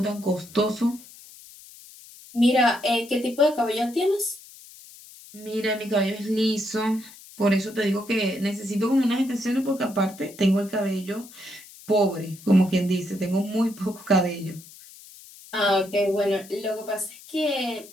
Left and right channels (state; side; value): noise; left; hiss, 20 dB below the sound